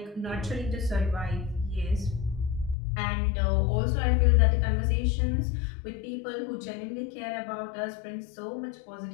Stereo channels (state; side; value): drops out; right; at 2.8 s